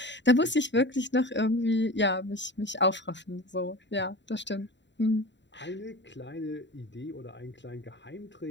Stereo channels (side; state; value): right; late; 0.52 ms